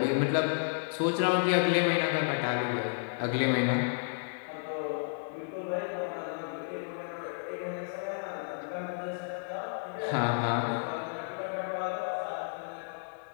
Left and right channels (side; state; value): right; silent; digital silence